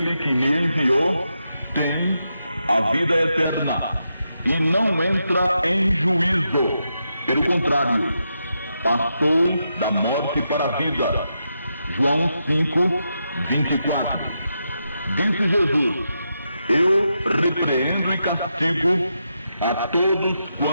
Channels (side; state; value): both; inverted; correlation -0.85